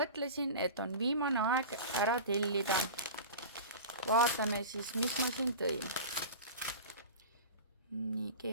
mõtlesin, et on viimane aeg ära tellida. Vaatame siis, mis ma siin tõin. Nii,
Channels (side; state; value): both; inverted; correlation -0.33